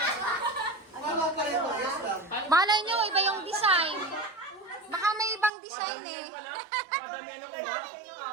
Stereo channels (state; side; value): drops out; left; at 5.5 s